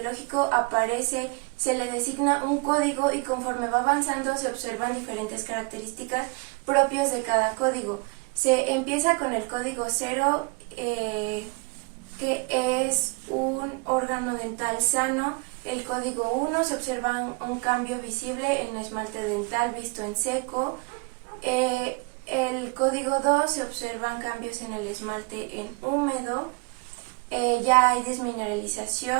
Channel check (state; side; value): quieter; left; 30.8 dB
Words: aparece, se le designa un código y conforme va avanzando se observan diferentes características propias de cada código. Se empieza con el código 0, que es un órgano dental sano. El código 1, se observa un cambio visible en el esmalte dental visto en seco. El código 2, se observan cambios en el esmalte en húmedo. Ya hay